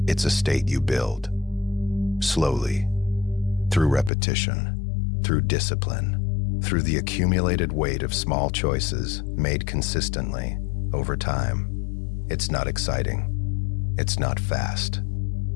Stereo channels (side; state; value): right; drops out; at 4.1 s